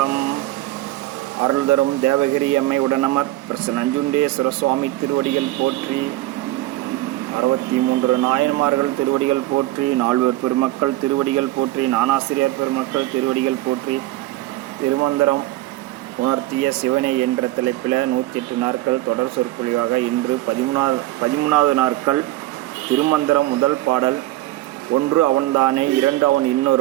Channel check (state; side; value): quieter; left; 17.0 dB